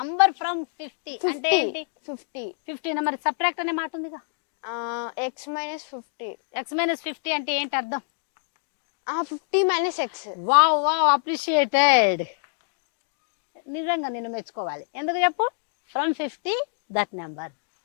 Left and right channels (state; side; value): silent; right; digital silence